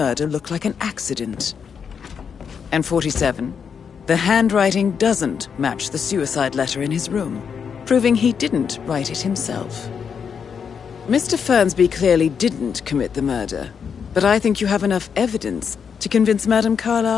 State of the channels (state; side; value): quieter; right; 6.8 dB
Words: look like an accident. And 47, the handwriting doesn't match the suicide letter in his room, proving he didn't write it himself. Mr. Fernsby clearly didn't commit the murder, but I think you have enough evidence to convince Madame